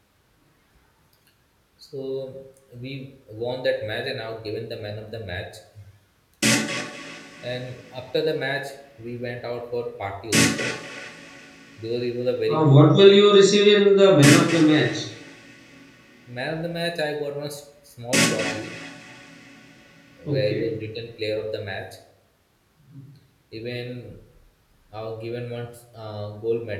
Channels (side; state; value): both; identical; correlation 1.00